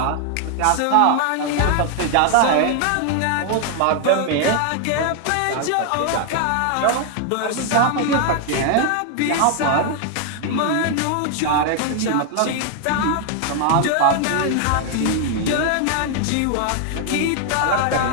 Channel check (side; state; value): both; different; correlation 0.00